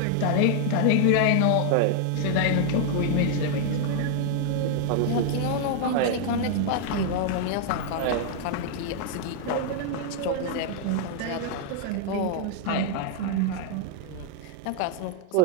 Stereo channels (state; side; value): different; both; correlation 0.00